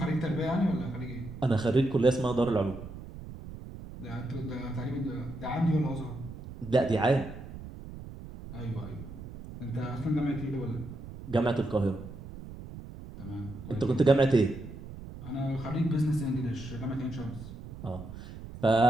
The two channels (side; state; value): right; noise; rumble, 13 dB below the sound